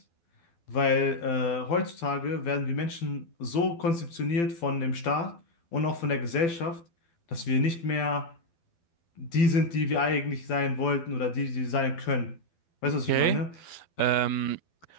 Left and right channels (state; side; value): late; right; 12 ms